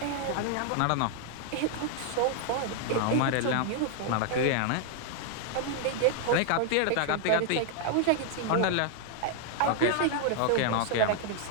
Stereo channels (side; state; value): both; different; correlation 0.00